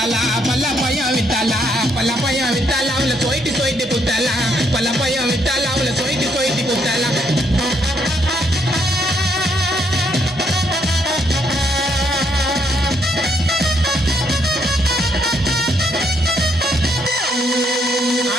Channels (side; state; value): both; normal; correlation 0.73